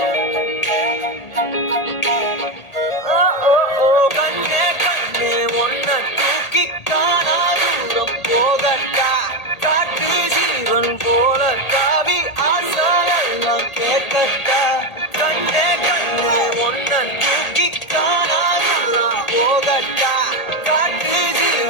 கண்ணே கண்ணே உன்னை தூக்கி காணாதூரம் போகட்டா காட்டு ஜீவன் போல தாவி ஆசாயல் கேட்கட்டா கண்ணே கண்ணே உன்னை தூக்கி காணாதூரம் போகட்டா காட்டு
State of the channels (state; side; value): late; right; 1.8 ms